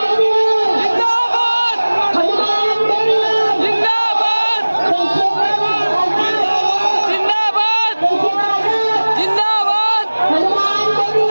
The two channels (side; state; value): both; inverted; correlation -1.00